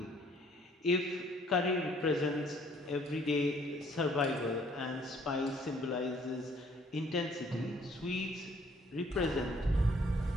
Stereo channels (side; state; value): both; normal; correlation 0.61